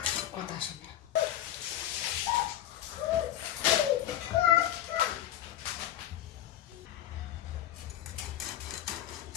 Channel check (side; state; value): right; quieter; 12.1 dB